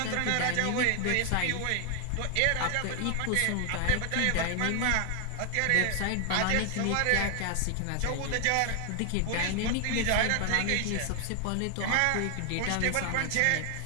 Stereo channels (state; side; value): different; both; correlation 0.00